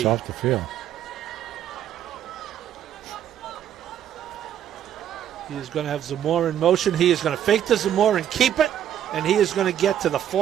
off the field. He is going to have Zamora in motion. He is going to fake the Zamora and keep it. And he is going to get to the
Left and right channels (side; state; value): left; quieter; 10.3 dB